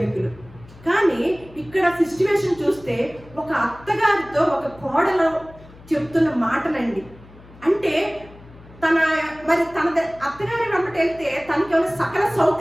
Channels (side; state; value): left; noise; hum, 22 dB below the sound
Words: కానీ ఇక్కడ సిచ్యువేషన్ చూస్తే ఒక అత్తగారితో ఒక కోడలు చెప్తున్న మాటలండి. అంటే తన అత్తగారి వెంబట వెళ్తే తనకి ఏమైనా సకల